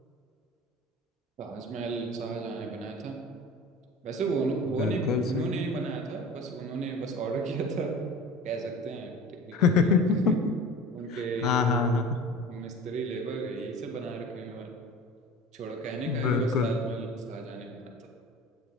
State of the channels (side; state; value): both; normal; correlation 0.39